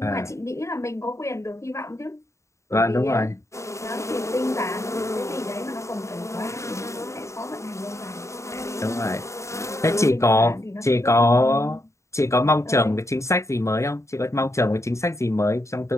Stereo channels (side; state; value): right; late; 0.14 ms